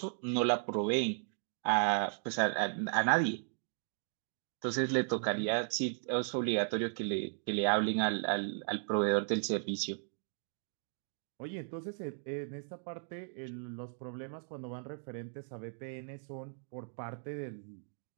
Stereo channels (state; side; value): silent; left; digital silence